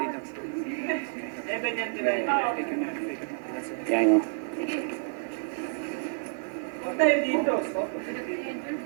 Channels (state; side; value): silent; left; digital silence